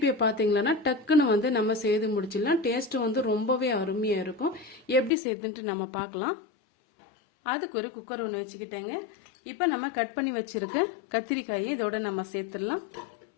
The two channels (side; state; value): right; drops out; at 5.1 s